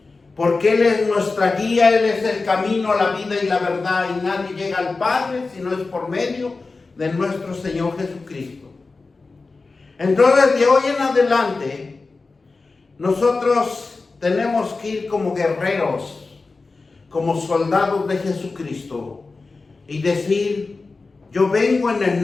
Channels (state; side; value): quieter; right; 3.9 dB